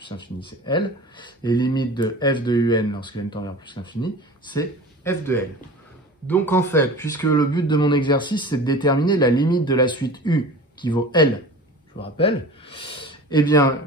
l'infini, c'est L. Et limite de f de un lorsque n tend vers plus l'infini, c'est f de L. Donc en fait, puisque le but de mon exercice, c'est de déterminer la limite de la suite u qui vaut L, je vous rappelle, eh bien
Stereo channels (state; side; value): normal; both; correlation 0.37